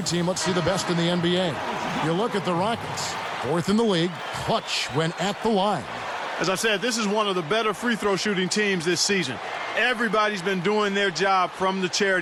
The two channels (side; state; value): both; identical; correlation 1.00